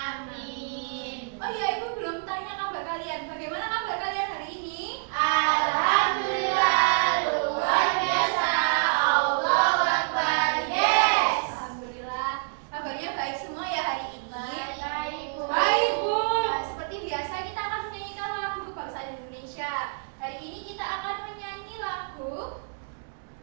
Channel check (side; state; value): left; silent; digital silence